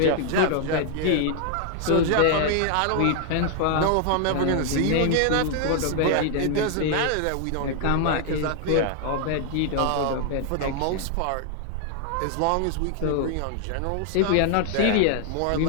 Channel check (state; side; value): different; both; correlation 0.00